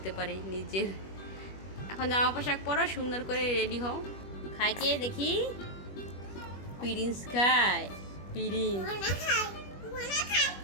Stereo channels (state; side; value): late; right; 21 ms